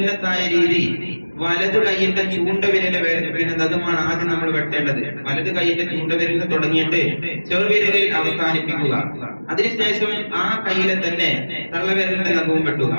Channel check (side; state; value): both; inverted; correlation -1.00